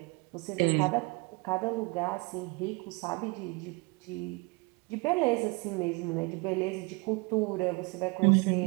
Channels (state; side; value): quieter; left; 28.0 dB